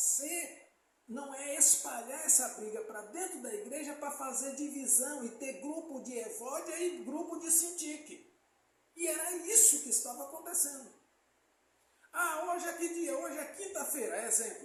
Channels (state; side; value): identical; both; correlation 1.00